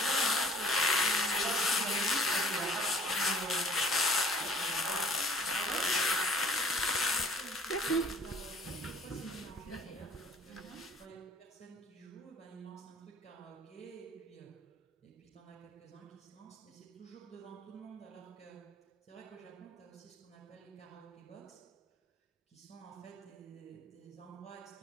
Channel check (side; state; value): both; normal; correlation 0.52